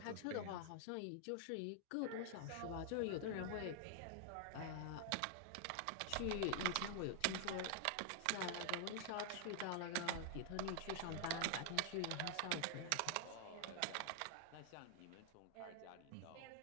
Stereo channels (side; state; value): both; different; correlation 0.00